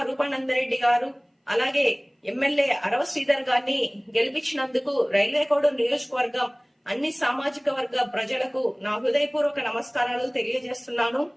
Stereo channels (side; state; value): both; identical; correlation 1.00